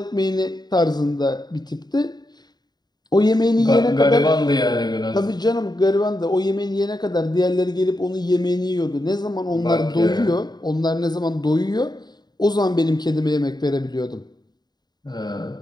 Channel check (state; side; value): late; right; 0.20 ms